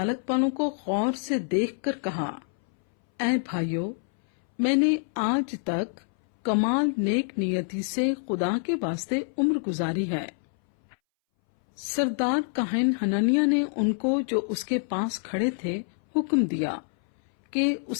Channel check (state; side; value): silent; right; 61 dB below the other